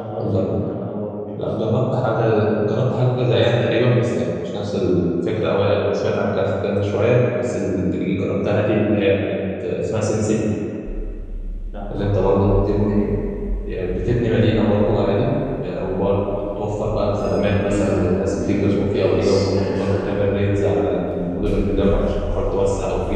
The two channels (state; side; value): identical; both; correlation 1.00